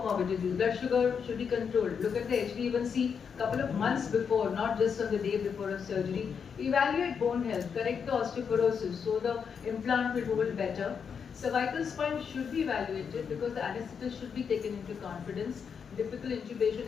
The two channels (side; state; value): right; quieter; 6.6 dB